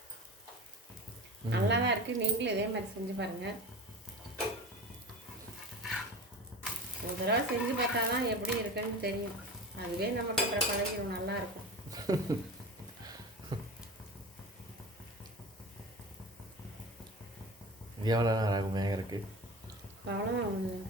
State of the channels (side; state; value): both; normal; correlation 0.31